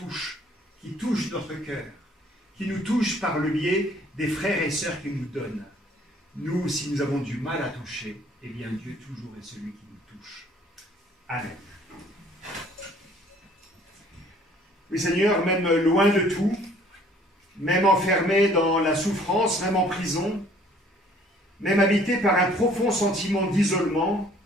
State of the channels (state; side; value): normal; both; correlation 0.57